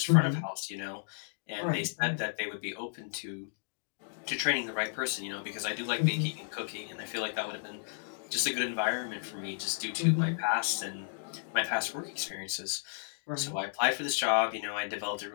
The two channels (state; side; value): silent; right; digital silence